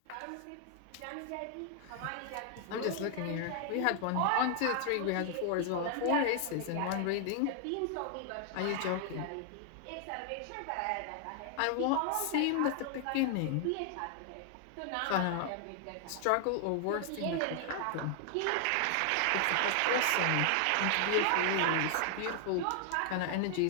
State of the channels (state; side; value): different; both; correlation 0.00